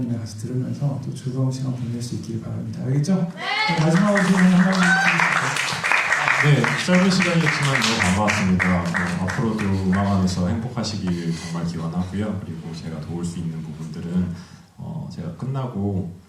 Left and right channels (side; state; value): both; identical; correlation 1.00